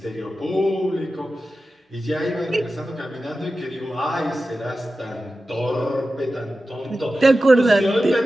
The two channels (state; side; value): normal; both; correlation 0.93